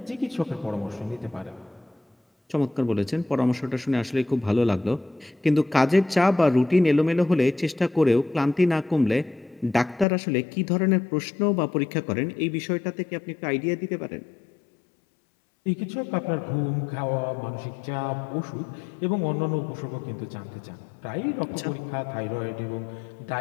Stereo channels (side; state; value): right; drops out; at 10.1 s